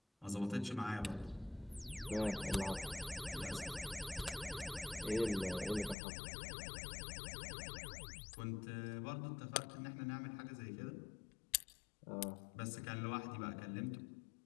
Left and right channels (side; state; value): right; drops out; at 6.0 s